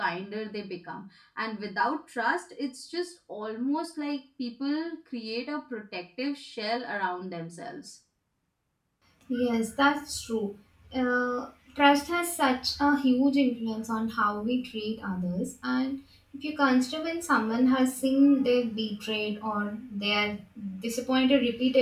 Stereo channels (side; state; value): both; identical; correlation 1.00